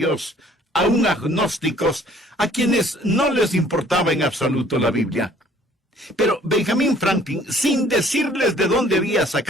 aún agnósticos, a quienes no les importaba en absoluto la Biblia. Pero Benjamin Franklin, sin decirles de dónde había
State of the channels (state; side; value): normal; both; correlation 0.57